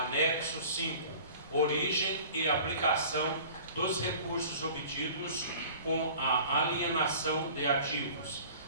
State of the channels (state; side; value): inverted; both; correlation -0.44